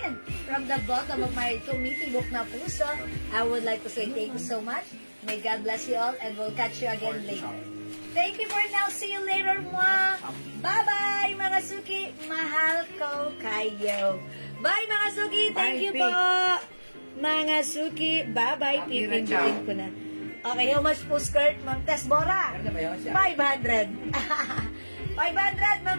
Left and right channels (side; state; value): both; inverted; correlation -1.00